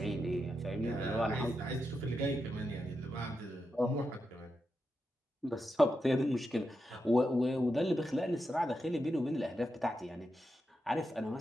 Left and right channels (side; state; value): both; normal; correlation 0.87